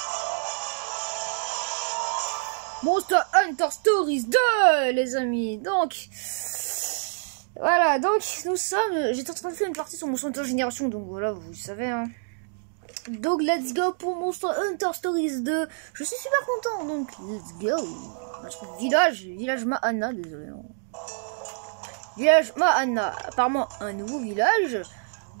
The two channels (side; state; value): left; silent; digital silence